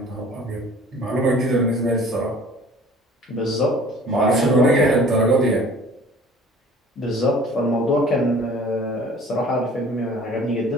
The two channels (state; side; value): normal; both; correlation 0.49